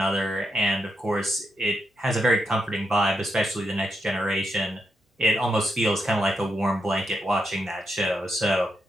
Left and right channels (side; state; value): both; normal; correlation 0.83